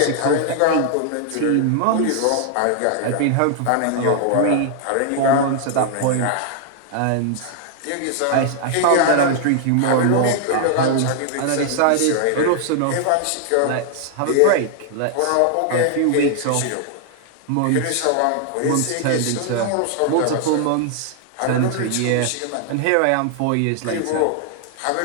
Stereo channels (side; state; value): both; different; correlation 0.00